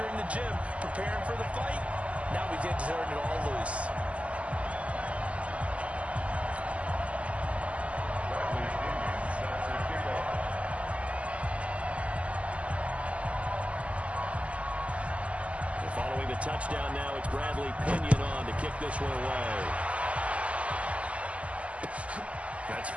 in the gym preparing for the fight. Now we get to turn it all loose. Following the touchdown now, it's Bradley Pinion on to kick this one away. That's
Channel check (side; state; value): left; late; 0.064 ms